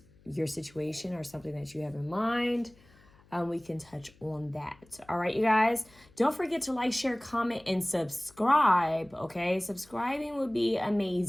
your situation or something that you have in mind. We can touch on that. All right, you guys, don't forget to like, share, comment, and subscribe, okay? Subscribing would be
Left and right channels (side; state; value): left; noise; hum, 28 dB below the sound